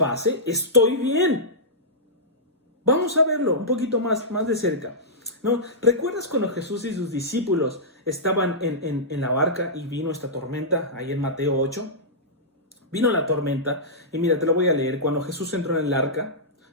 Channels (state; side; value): normal; both; correlation -0.14